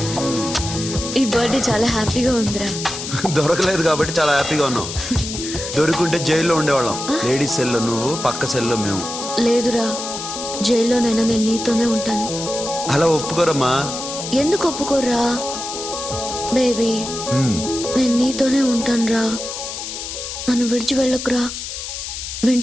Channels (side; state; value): left; noise; hiss, 7 dB below the sound